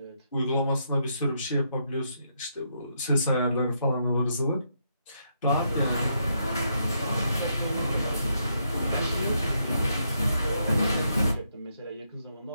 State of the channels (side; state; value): both; inverted; correlation -0.78